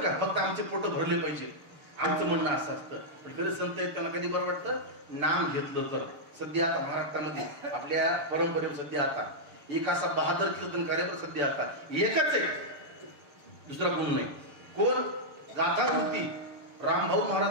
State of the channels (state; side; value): late; left; 6.8 ms